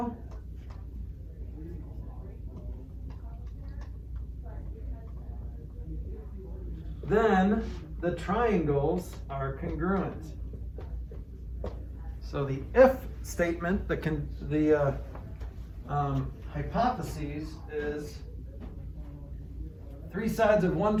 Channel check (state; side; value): identical; both; correlation 1.00